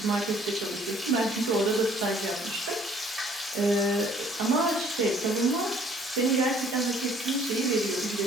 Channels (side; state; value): both; normal; correlation 0.58